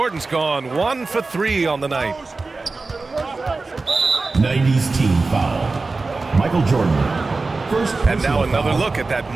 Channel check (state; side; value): quieter; left; 3.7 dB